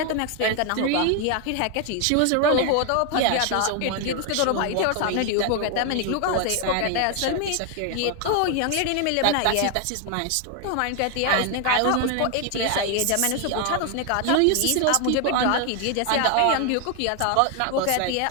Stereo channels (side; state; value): both; different; correlation 0.00